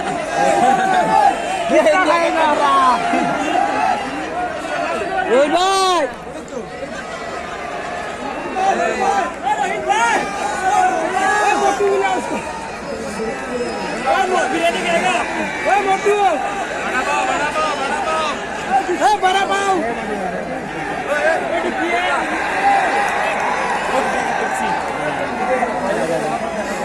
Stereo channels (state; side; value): identical; both; correlation 1.00